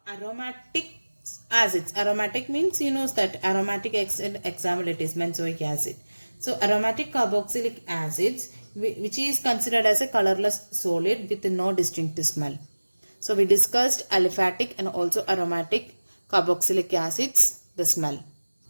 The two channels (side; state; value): both; inverted; correlation -1.00